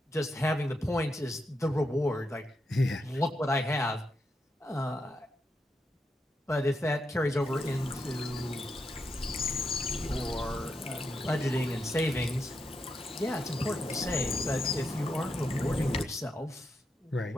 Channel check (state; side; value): normal; both; correlation 0.84